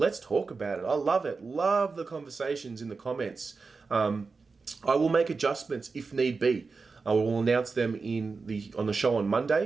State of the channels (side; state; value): left; quieter; 4.5 dB